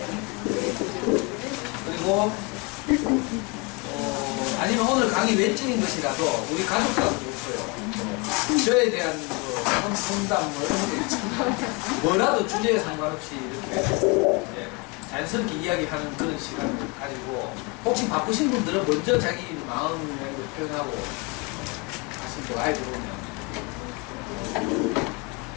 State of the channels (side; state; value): right; quieter; 28.7 dB